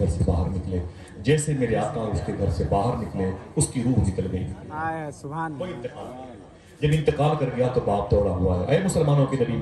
से बाहर निकले, जैसे मेरे आका उसके घर से बाहर निकले उसकी रूह निकल गई। सुभान अल्लाह। जब इंतकाल कर गया तो बाप दौड़ा हुआ है, ऐ मुसलमानों के नबी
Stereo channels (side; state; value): both; identical; correlation 1.00